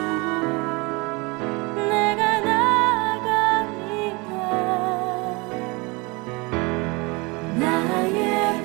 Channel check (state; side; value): quieter; left; 26.6 dB